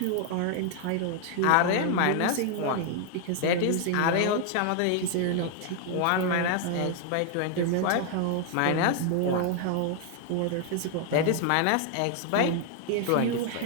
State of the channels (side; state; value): both; different; correlation 0.00